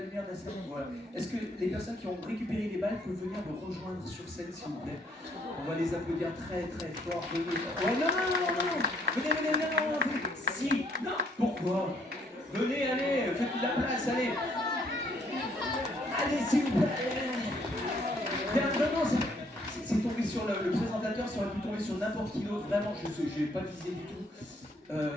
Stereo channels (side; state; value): both; normal; correlation 0.67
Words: de la salle? Voilà. Est-ce que les personnes qui ont récupéré les balles peuvent venir me rejoindre sur scène, s'il vous plaît? On va les applaudir très très fort. Venez. Ouais, non. Venez, non. Si, non, pourquoi? Venez, allez, faites de la place, allez. Allez, s'il vous plaît. Bien, vraiment, c'est tombé sur le présentateur, ça aurait pu tomber sur n'importe qui d'autre. Vraiment, je n'ai pas visé du tout.